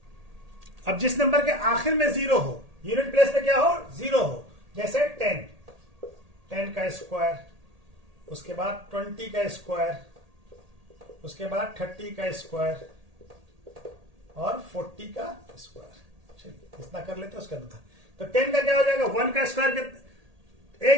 अब जिस नंबर के आखिर में 0 हो, यूनिट प्लेस पे क्या हो, 0 हो, जैसे 10 का स्क्वायर, उसके बाद 20 का स्क्वायर, उसके बाद 30 का स्क्वायर और 40 का स्क्वायर। चलिए इतना कर लेते हैं, उसका था। तो 10 का क्या हो जाएगा, 1 का स्क्वायर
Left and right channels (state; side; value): late; left; 1.8 ms